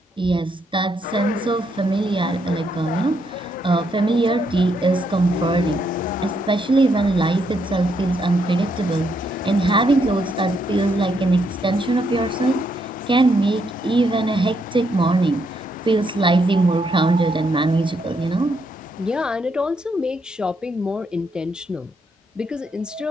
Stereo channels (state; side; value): normal; both; correlation 0.76